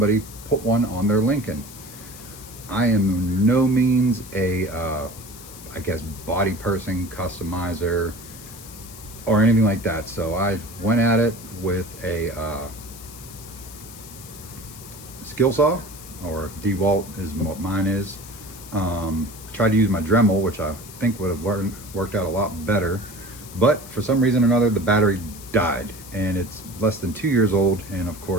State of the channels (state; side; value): noise; left; hiss, 16 dB below the sound